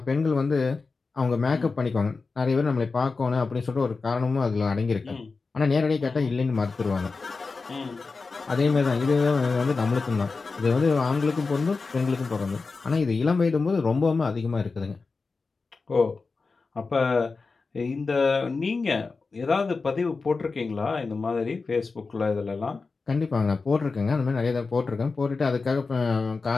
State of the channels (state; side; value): quieter; right; 4.2 dB